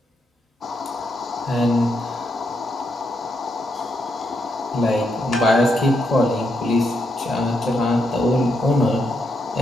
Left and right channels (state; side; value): normal; both; correlation 0.80